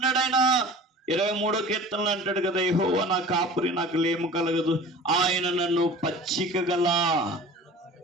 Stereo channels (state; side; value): normal; both; correlation 0.41